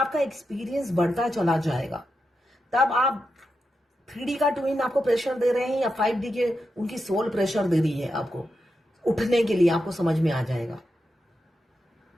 एक्सपीरियंस बढ़ता चला जाएगा, तब आप 3D का ट्विन आपको प्रेशर दे रहे हैं या 5D के उनकी सोल प्रेशर दे रही है आपको उठने के लिए, आपको समझ में आ जाएगा।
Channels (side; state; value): both; normal; correlation 0.87